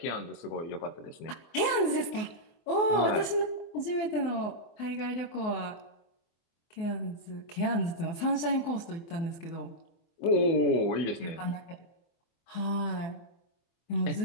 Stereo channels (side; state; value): right; late; 24 ms